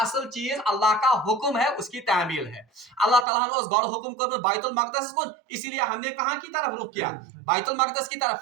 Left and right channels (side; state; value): left; drops out; at 3.2 s